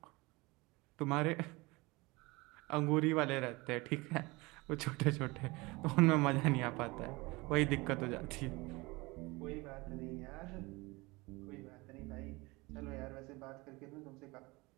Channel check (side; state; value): left; quieter; 23.7 dB